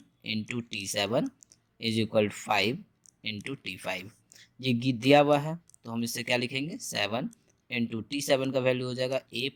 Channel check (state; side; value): identical; both; correlation 1.00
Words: into T7 is equal to 5 into T5। ये दिया हुआ है तो हम इससे क्या लिखेंगे, 7 इंटू T7 का वैल्यू हो जाएगा A